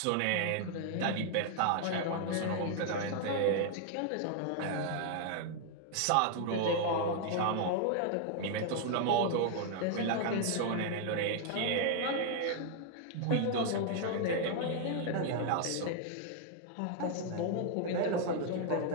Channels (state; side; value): different; both; correlation 0.00